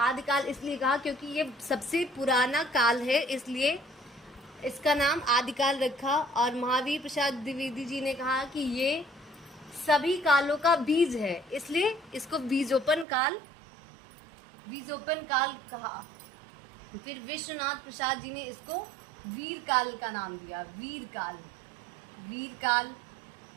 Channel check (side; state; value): left; drops out; at 13.1 s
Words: इसलिए कहा क्योंकि ये सबसे पुराना काल है, इसलिए इसका नाम आदिकाल रखा। और महावीर प्रसाद द्विवेदी जी ने कहा कि ये सभी कालों का बीज है, इसलिए इसको बीजोपन काल कहा। फिर विश्वनाथ प्रसाद जी ने इसको वीर काल का नाम दिया, वीर काल।